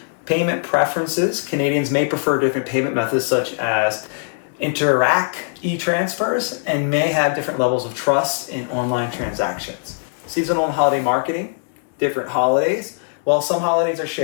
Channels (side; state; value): right; silent; digital silence